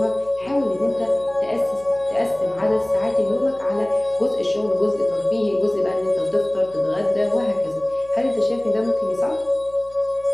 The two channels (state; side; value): noise; left; hum, 26 dB below the sound